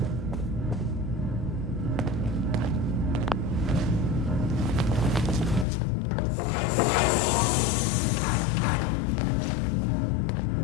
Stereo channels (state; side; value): drops out; right; at 5.7 s